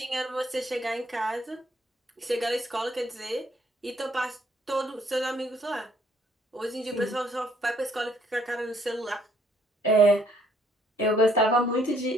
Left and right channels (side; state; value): both; normal; correlation 0.65